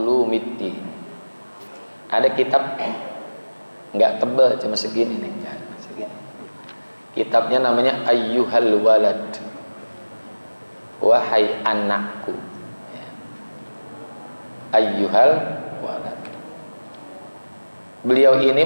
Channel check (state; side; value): inverted; both; correlation -1.00